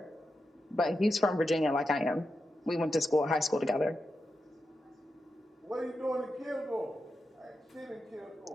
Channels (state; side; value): normal; both; correlation 0.88